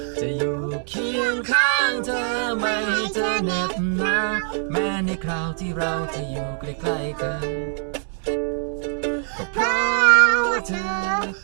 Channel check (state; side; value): silent; left; 56 dB below the other